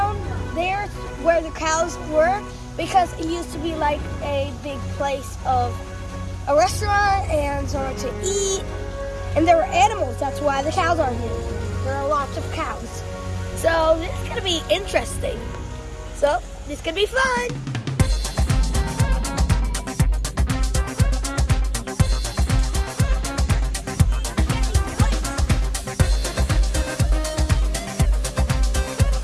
there where the cows were, because it used to be like a big place of a restaurant and somewhere to eat. And there were animals, that's why the cows are here. There are lots of cows. So this is gonna be interesting. So this could be fun.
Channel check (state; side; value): identical; both; correlation 1.00